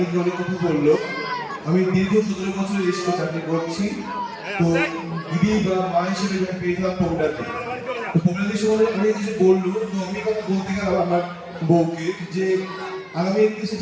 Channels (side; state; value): both; identical; correlation 1.00